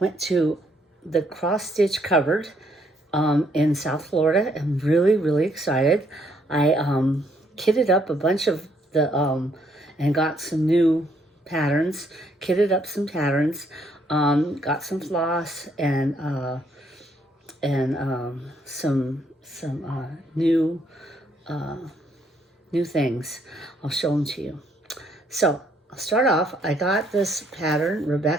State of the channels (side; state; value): both; normal; correlation 0.70